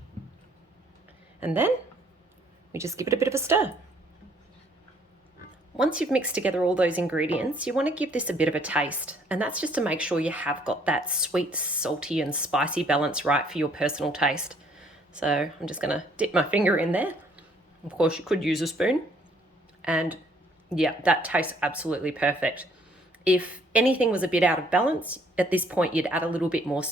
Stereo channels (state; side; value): normal; both; correlation 0.64